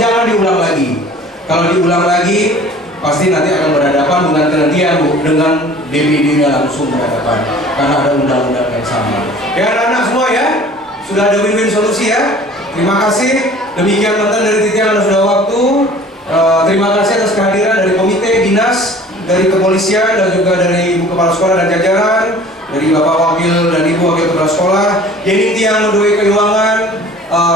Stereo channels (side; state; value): both; normal; correlation 0.47